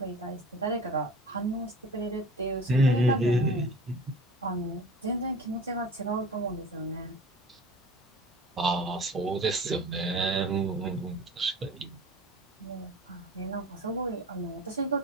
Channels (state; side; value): normal; both; correlation 0.40